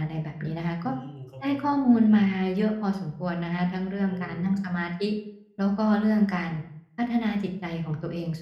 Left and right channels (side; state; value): both; identical; correlation 1.00